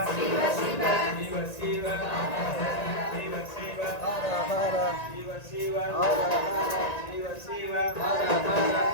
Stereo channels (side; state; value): right; late; 1.9 ms